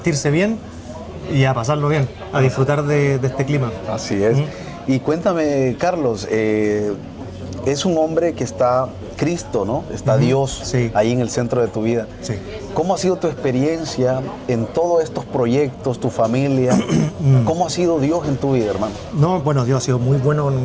bien y a pasarlo bien, a disfrutar de este clima. Así es. Y cuéntame, Carlos, es un hombre que está Cristo, ¿no? Está Dios Sí. ahí en el centro de tu vida. Sí. ¿Cómo ha sido tu experiencia en todos estos proyectos, tu familia? ¿Cómo ha sido Dios en tu vida, hermano? No, bueno, Dios ha sido muy bueno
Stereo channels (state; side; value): identical; both; correlation 1.00